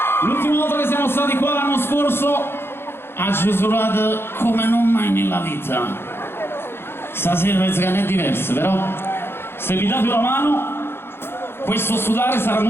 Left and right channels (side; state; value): right; late; 0.11 ms